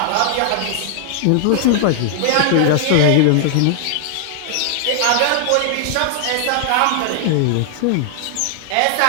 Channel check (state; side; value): different; both; correlation 0.00